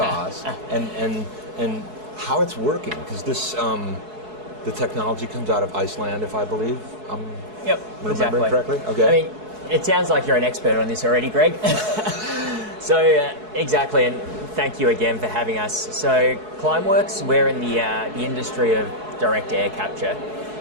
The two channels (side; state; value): left; late; 4.7 ms